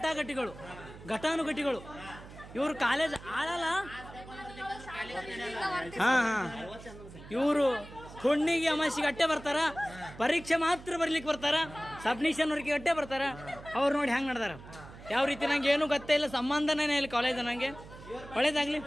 ಇವರು ಕಾಲೇಜ್ ಆಳಲ್ಲ. ಇವರು ಹುಣ್ಣಿಗೆ ಅಮಾಸಿಗೆ ಅಟ್ಟೆ ಬರ್ತಾರ, ಪರೀಕ್ಷೆ ಮಾತ್ರ ಬರ್ಲಿಕ್ಕೆ ಬರ್ತಾರ, ಸಬ್ಮಿಷನ್ ವರ್ಕಿಗೆ ಅಟ್ಟೆ ಬರ್ತಾರ. ಅವ್ರು ನೋಡಿ ಹೆಂಗೆ ನಡೆದಾರ. ಯಾವ ರೀತಿ ನಂಗೆ ಏನೂ ಗೊತ್ತೇ ಇಲ್ಲ, ಸಂಬಂಧನೇ ಇಲ್ಲ ಕಾಲೇಜ್. ನನಗೆ ಒಳ್ಳೇದಾಗ್ಲಿ.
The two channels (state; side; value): noise; right; hum, 16 dB below the sound